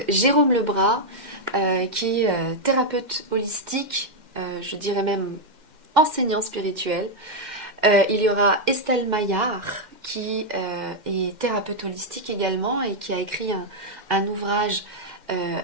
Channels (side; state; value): left; late; 2.1 ms